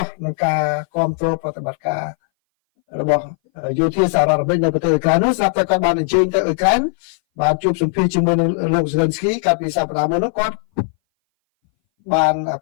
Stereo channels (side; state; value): right; silent; 61 dB below the other